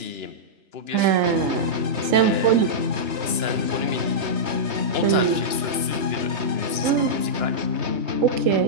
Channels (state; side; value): late; left; 2.9 ms